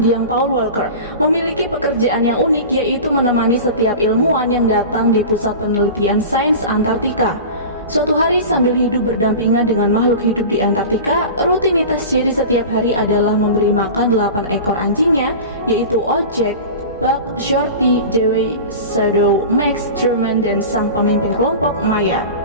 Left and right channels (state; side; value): inverted; both; correlation -0.33